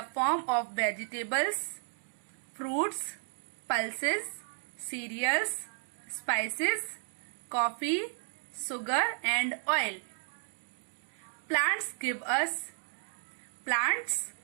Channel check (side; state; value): left; silent; 55 dB below the other